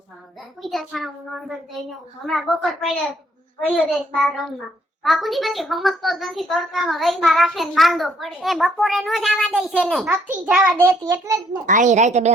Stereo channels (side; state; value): both; normal; correlation 0.67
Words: પૂજા છાણું નોંધર દઈને હમણાં બપોર પડે ગયો દેશ બાર રમવા. બાપુજી પછી સમજતો જ નથી તડકામાં રહીમાં રાખે ને માંદો પડે. એ બપોરે નો જવા દે છે ને. નથી જવા દેતી એટલે જ ને. આઈ રાતે 2